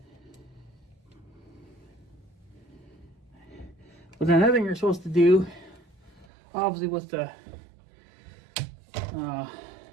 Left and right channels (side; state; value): left; drops out; at 6.2 s